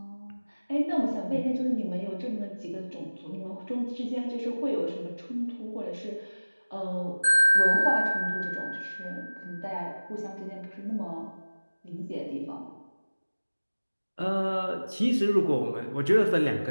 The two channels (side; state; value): both; inverted; correlation -1.00